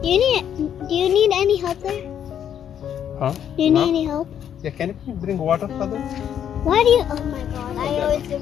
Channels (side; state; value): right; quieter; 9.4 dB